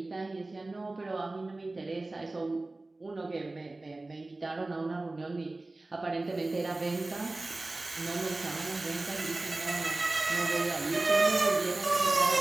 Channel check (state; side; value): quieter; left; 3.0 dB